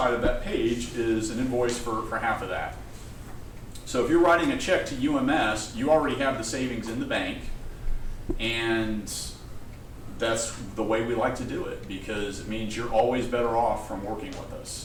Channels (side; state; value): both; identical; correlation 1.00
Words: of that page is an invoice for half of that. So if you're writing a check to UMS, you already have the savings in the bank, and that's the way we like to do it, because it means you're always better off from working with